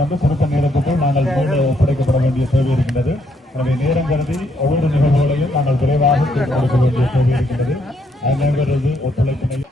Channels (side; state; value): both; normal; correlation 0.73